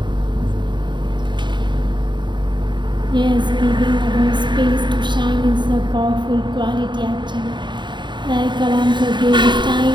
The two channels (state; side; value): late; left; 0.22 ms